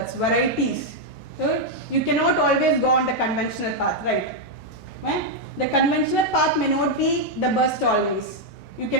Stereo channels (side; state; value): both; normal; correlation -0.01